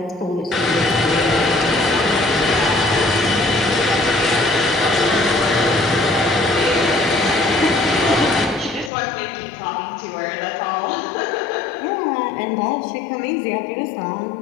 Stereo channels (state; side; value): drops out; right; at 8.9 s